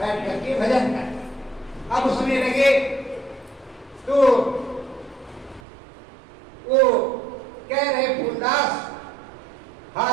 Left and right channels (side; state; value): left; drops out; at 5.6 s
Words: करके भजन करते। अब उसमें लगे तो वो कह रहे फूलदास,